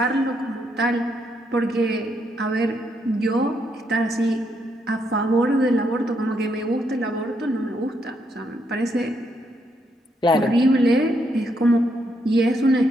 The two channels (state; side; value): normal; both; correlation 0.77